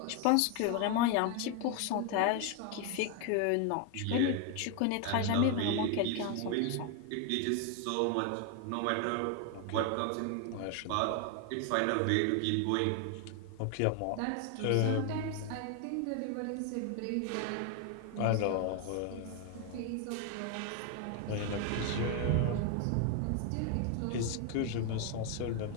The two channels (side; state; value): both; different; correlation 0.01